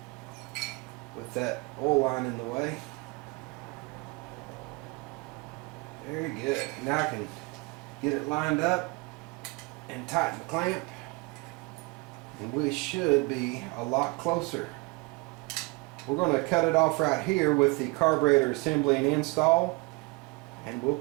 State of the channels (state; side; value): quieter; left; 26.8 dB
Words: with that oil line in the way. Very good. Now I can get it lined up and tighten the clamp, and we should be a lot closer. We're going to cut it off right here with the carburetor assembly and install, and we'll